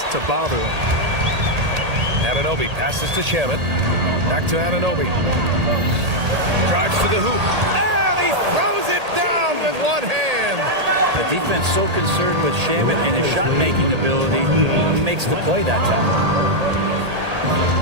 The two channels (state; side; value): late; left; 1.8 ms